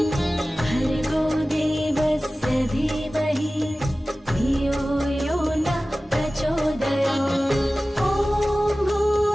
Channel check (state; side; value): normal; both; correlation 0.97